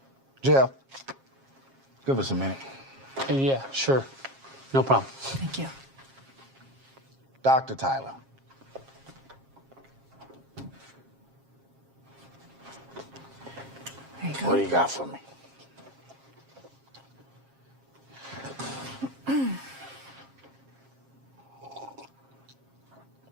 Jeff, give us a minute. Yeah, sure. No problem. Thank you. Dr. Tyler. There you go. What do you got for me?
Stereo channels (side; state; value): left; late; 7.4 ms